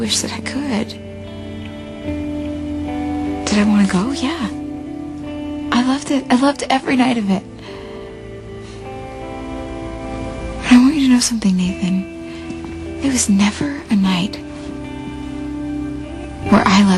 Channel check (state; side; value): identical; both; correlation 1.00